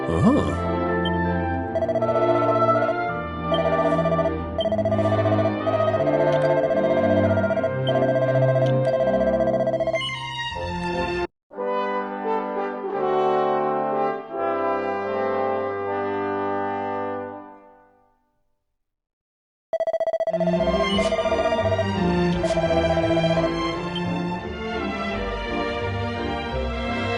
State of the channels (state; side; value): identical; both; correlation 1.00